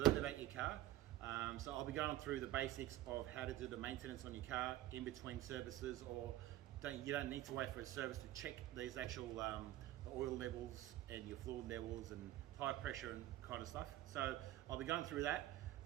about your car. So I'll be going through the basics of how to do the maintenance on your car in between services, or you don't need to wait for a service to check these actual the oil levels and your fluid levels and tire pressure and kind of stuff. So I'll be going through that,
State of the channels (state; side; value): quieter; left; 14.8 dB